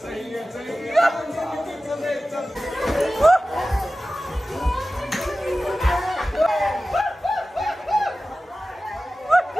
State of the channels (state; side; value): normal; both; correlation 0.95